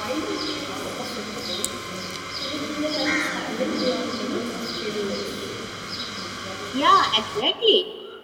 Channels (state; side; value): identical; both; correlation 1.00